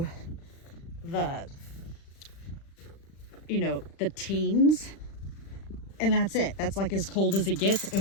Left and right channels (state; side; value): late; right; 36 ms